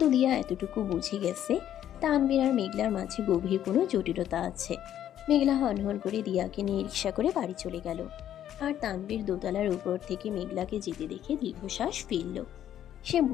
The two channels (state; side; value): quieter; right; 11.0 dB